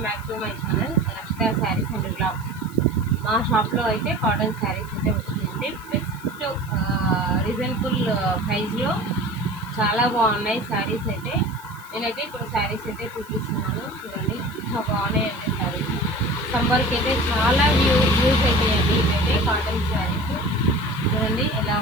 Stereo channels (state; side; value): noise; right; hiss, 23 dB below the sound